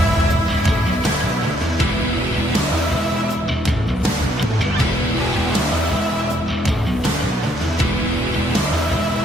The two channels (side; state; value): both; normal; correlation 0.70